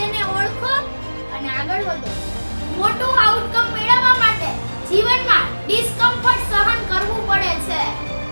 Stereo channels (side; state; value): both; inverted; correlation -1.00